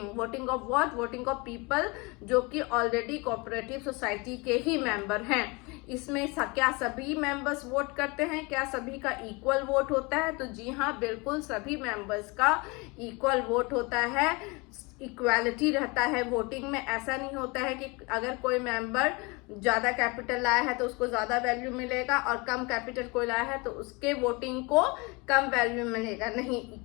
of what? Voting of people जो कि ऑलरेडी कोऑपरेटिव सोसाइटी के ही मेंबर हैं। इसमें क्या सभी मेंबर्स वोट करते हैं? क्या सभी का इक्वल वोट होता है? तो जी हाँ, बिल्कुल सभी मेंबर्स का इक्वल वोट होता है, इक्वालिटी रहता है वोटिंग में। ऐसा नहीं होता है कि अगर कोई मेंबर ज्यादा कैपिटल लाया है तो उसको ज्यादा वैल्यू मिलेगा और कम कैपिटल कोई लाया है तो उसके वोटिंग को कम वैल्यू मिलेगा। नहीं,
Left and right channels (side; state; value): right; quieter; 27.3 dB